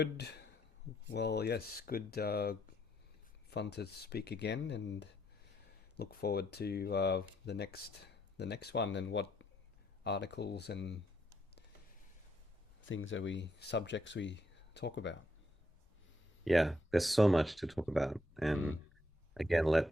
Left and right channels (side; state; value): both; normal; correlation 0.75